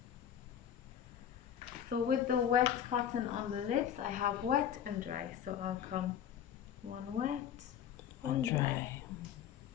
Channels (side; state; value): right; quieter; 9.5 dB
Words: So with the wet cotton on the lips, I have wet and dry. So I'll come one wet, one dry.